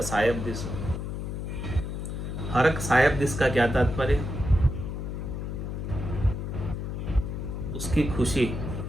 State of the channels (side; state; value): left; noise; hum, 4 dB below the sound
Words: सायब दिस। हरक सायब दिस का क्या तात्पर्य? उसकी खुशी,